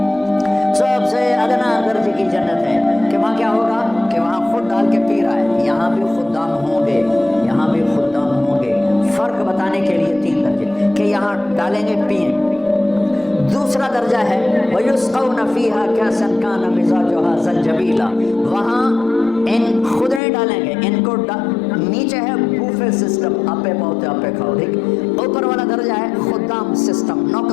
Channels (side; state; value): right; drops out; at 20.2 s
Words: سب سے ادنا درجے کی جنت ہے کہ وہاں کیا ہوگا کہ وہاں خود ڈال کے پی رہا ہے، یہاں بھی خدام ہوں گے، یہاں بھی خدام ہوں گے۔ فرق بتانے کے لیے 3 درجے کہ یہاں ڈالیں گے پئیں۔ دوسرا درجہ ہے وَيُسْقَوْنَ فِيهَا كَأْسًا كَانَ مِزَاجُهَا زَنْجَبِيلًا، وہاں ان خود نہیں ڈالیں گے، ان کو نیچے ہے بوفے سسٹم، آپے پوتے آپے کھاؤ، ٹھیک۔ اوپر والا درجہ ہے خدام سسٹم،